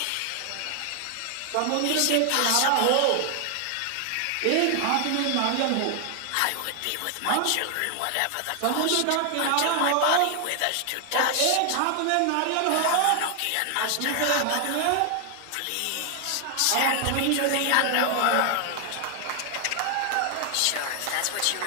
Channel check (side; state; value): both; different; correlation 0.00